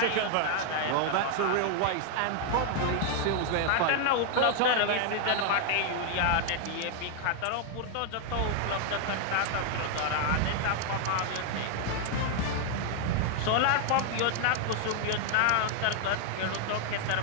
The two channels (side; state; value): both; different; correlation 0.00